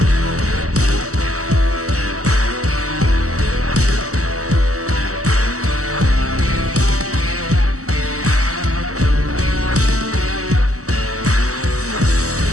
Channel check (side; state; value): left; late; 0.66 ms